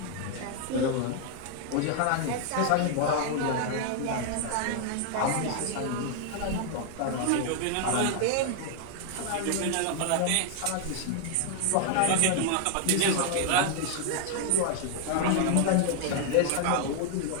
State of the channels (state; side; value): different; both; correlation 0.00